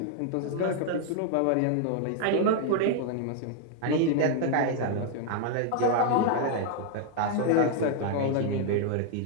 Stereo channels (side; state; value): both; different; correlation 0.00